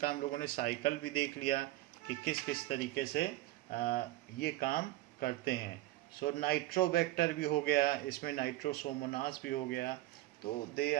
हम लोगों ने साइकिल भी देख लिया कि किस किस तरीके से ये काम करते हैं। सो नाइट्रोबैक्टर भी हो गया, इसमें नाइट्रोसोमोनास भी हो गया, तो they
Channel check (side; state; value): left; quieter; 16.6 dB